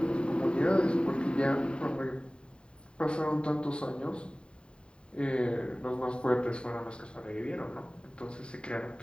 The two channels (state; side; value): late; right; 0.052 ms